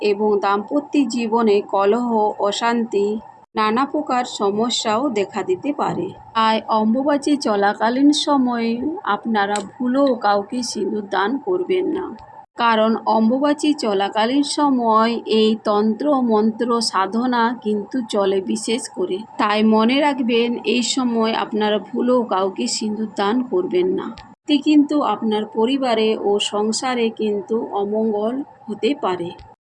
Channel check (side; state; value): both; identical; correlation 1.00